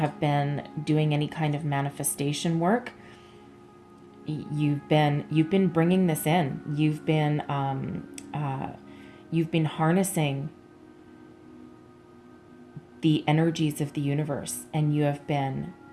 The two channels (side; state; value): both; identical; correlation 1.00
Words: been doing any kind of manifestation work, you've been bringing this in. You've been harnessing the energies of the universe, and you have been